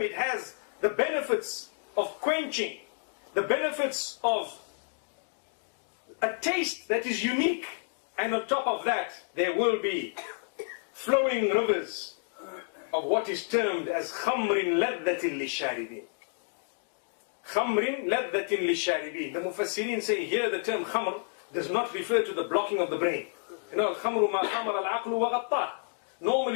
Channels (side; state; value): right; silent; 58 dB below the other